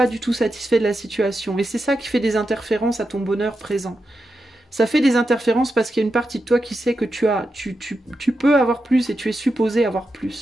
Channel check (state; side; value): normal; both; correlation 0.88